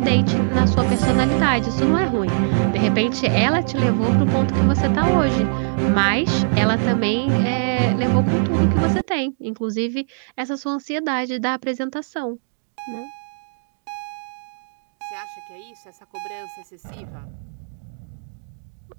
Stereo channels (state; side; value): silent; left; digital silence